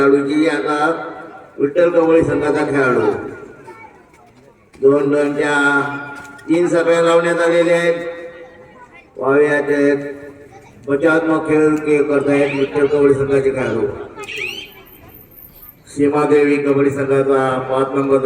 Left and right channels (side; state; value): both; identical; correlation 1.00